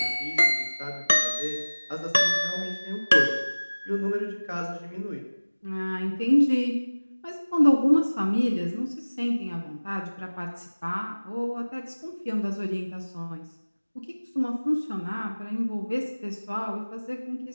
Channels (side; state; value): both; inverted; correlation -1.00